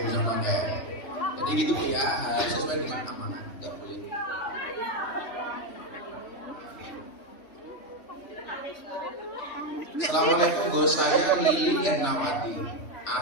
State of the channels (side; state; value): right; late; 3.4 ms